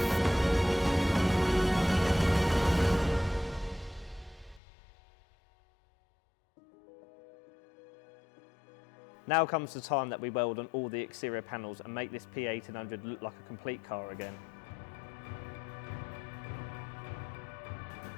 Now comes the time that we weld on all the exterior panels and make this P1800 look like a complete car again.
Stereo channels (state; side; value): drops out; right; at 4.6 s